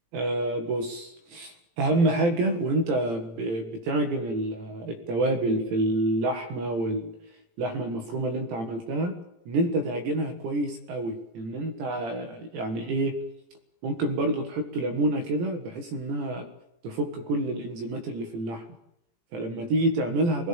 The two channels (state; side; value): late; left; 18 ms